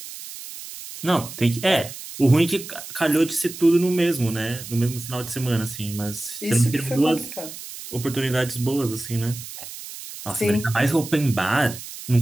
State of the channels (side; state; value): right; noise; hiss, 12 dB below the sound